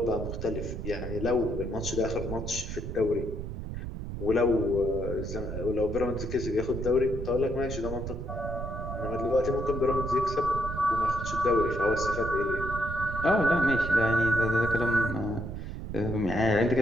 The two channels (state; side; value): noise; right; rumble, 6 dB below the sound